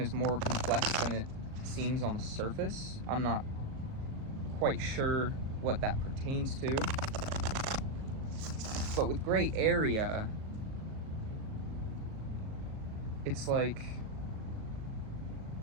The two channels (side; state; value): left; late; 38 ms